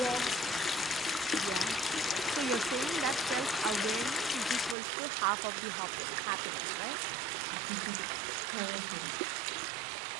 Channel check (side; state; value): left; drops out; at 4.8 s